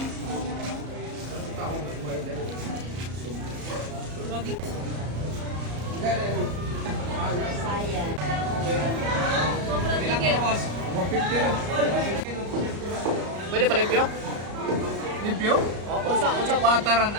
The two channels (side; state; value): left; late; 34 ms